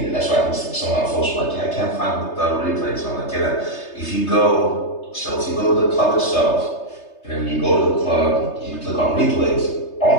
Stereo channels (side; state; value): right; late; 3.3 ms